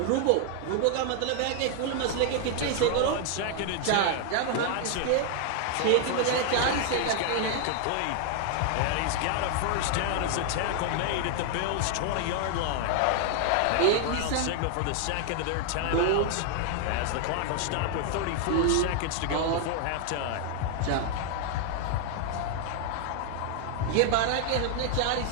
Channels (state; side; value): different; both; correlation 0.00